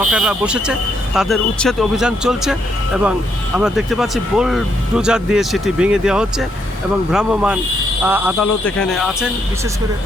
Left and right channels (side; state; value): both; normal; correlation 0.75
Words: বসেছে তাদের উচ্ছেদ অভিযান চলছে এবং আমরা দেখতে পাচ্ছি বুলডোজার দিয়ে সেটি ভেঙে দেওয়া হচ্ছে এবং ভ্রাম্যমাণ আদালত এখানে আছেন। বিশেষ করে